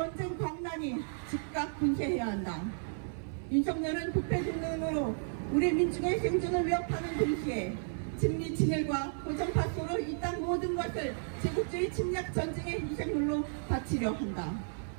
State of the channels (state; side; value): silent; left; 56 dB below the other